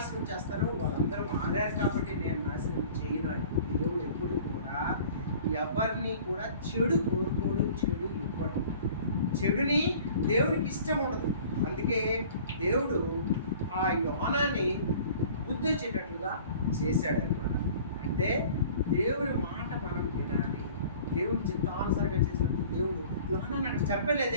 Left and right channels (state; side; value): inverted; both; correlation -0.47